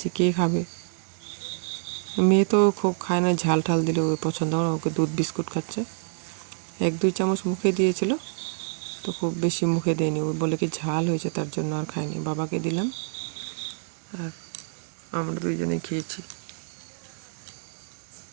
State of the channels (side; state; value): left; silent; 60 dB below the other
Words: কে খাবে। মেয়ে তো খুব খায় না, ঝাল ঠাল দিলে ওই পছন্দ হয় না, ওকে দুধ বিস্কুট খাচ্ছে। 1-2 চামচ মুখে দিয়েছিল, তো খুব বেশি মুখে দেয়নি, ও বলে কি ঝাল হয়েছে তার জন্য আর খায়নি। বাবাকে দিলাম আর আমরা দুইজনেই খেয়েছি।